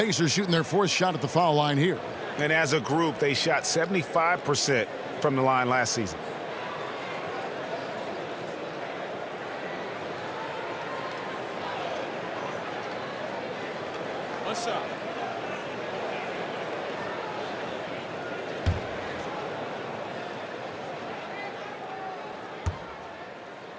shooting their fourth shot at the foul line here. And as a group, they shot 75% from the line last season. What's up?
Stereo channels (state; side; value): identical; both; correlation 1.00